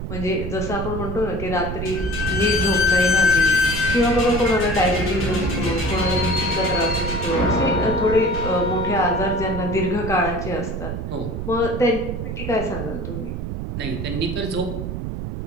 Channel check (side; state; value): right; noise; rumble, 5 dB below the sound